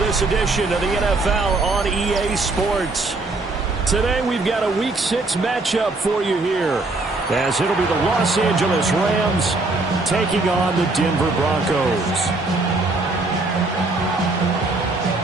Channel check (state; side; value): quieter; left; 3.3 dB